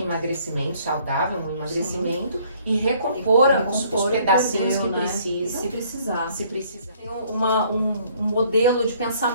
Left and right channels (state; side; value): inverted; both; correlation -0.61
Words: saudável, um emagrecimento e recompor os pedacinhos perdeu, que né? precisam. Se precisar. Se precisar. Tem um modelo de